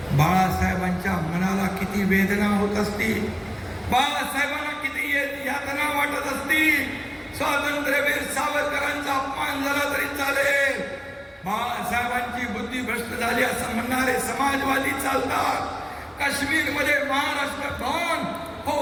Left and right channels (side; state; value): both; identical; correlation 1.00